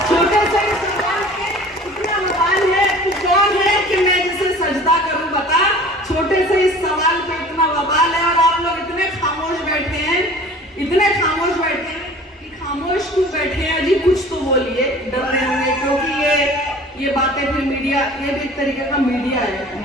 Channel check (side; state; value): both; normal; correlation 0.45